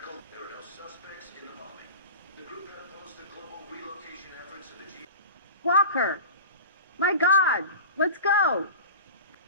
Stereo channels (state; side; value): inverted; both; correlation -0.33